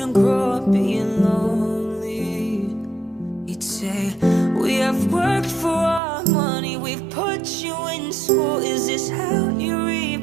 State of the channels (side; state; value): left; drops out; at 6.0 s